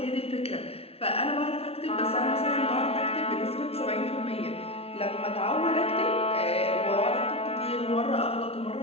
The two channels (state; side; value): late; right; 0.29 ms